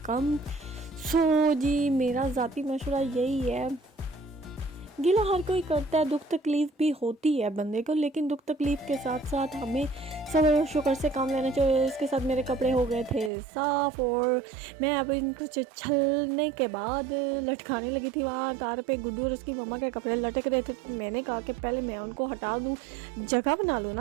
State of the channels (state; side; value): drops out; left; at 13.3 s